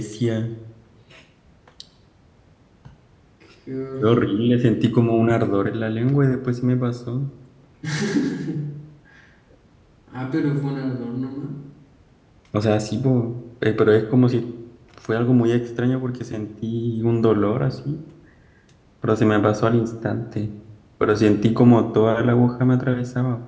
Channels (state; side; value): identical; both; correlation 1.00